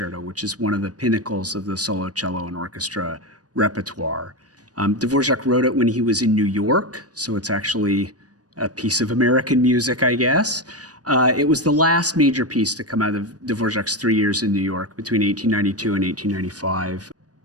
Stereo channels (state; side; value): late; left; 0.68 ms